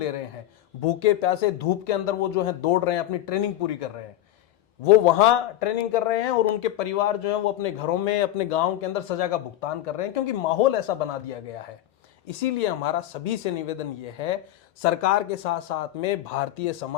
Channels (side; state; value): right; quieter; 13.5 dB